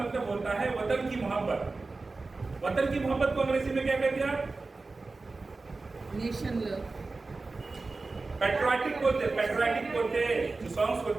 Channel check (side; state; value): left; quieter; 3.7 dB